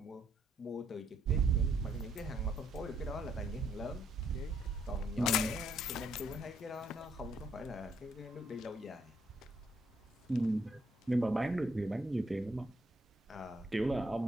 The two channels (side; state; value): both; normal; correlation 0.72